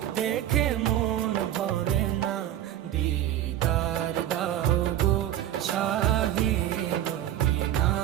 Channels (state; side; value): quieter; left; 12.1 dB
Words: দেখে মন ভরে না। দিদার দাও গো শাহে মদিনা,